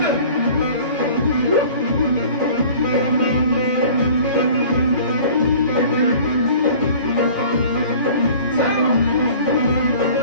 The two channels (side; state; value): both; inverted; correlation -0.46